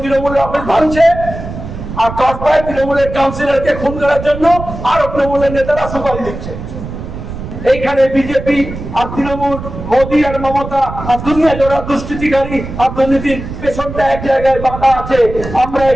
অফিস ভাঙছে, আর কসবায় তৃণমূলের কাউন্সিলরকে খুন করার জন্য আরো তৃণমূলের নেতারা সুপারিশ দিচ্ছে। এইখানে বিজেপি আর তৃণমূল, মোদী আর মমতা আর দুনিয়া জোড়া দুষ্কৃতিকারী আর দুর্নীতির পেছনটা এক জায়গায় বাঁধা আছে। আমরা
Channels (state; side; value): noise; right; rumble, 9 dB below the sound